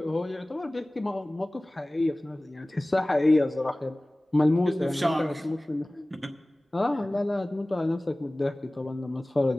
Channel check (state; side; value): normal; both; correlation 0.98